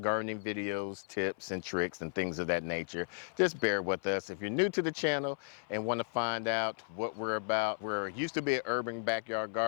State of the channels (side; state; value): right; silent; 55 dB below the other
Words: videos, tips and tricks and things of that nature. Just bear with us. If you're new to the channel and want to find out what we're about, we're used to be an urban backyard